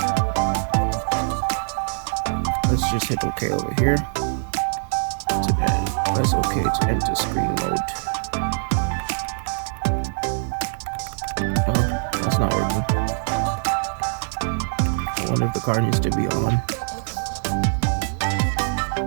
let's just hit OK over here. Press OK to enter screen mode. Oh, that's not working. I wonder if the car needs to be on.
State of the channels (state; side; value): silent; left; digital silence